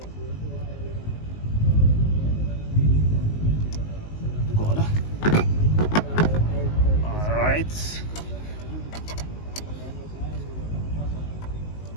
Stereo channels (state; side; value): late; right; 19 ms